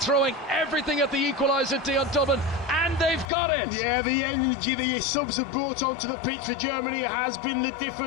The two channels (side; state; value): right; drops out; at 3.3 s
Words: everything at the equaliser, Dion Dublin, and they've got it. Yeah, the energy the subs have brought onto the pitch for Germany has been the